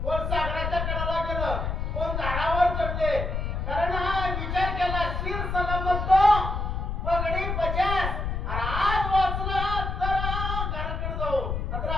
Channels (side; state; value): left; noise; rumble, 2 dB below the sound